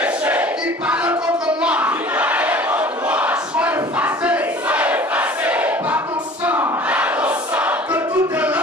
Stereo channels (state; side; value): normal; both; correlation 0.45